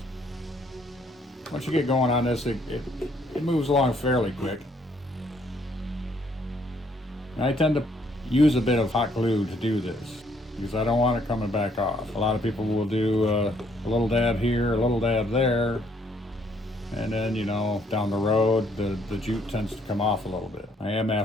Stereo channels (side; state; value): both; normal; correlation 0.67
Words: Once you get going on this, it moves along fairly quick. And I tend to use a bit of hot glue to do this because I don't want it coming back off. A lot of people will do a little dab here, a little dab there, and then, you know, down the road the jute tends to come off a little bit. I am,